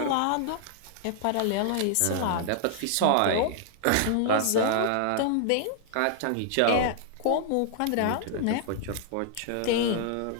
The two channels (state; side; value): different; both; correlation -0.01